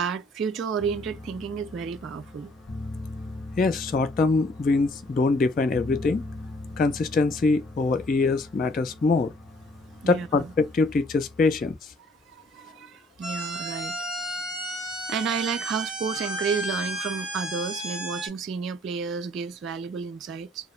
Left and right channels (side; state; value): both; normal; correlation 0.60